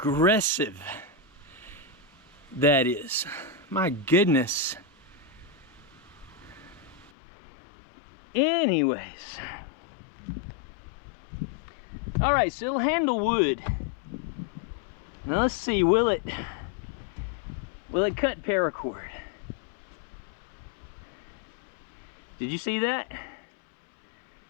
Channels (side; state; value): right; drops out; at 7.1 s